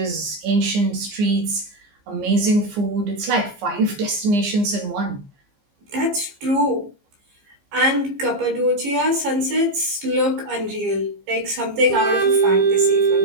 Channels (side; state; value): left; late; 15 ms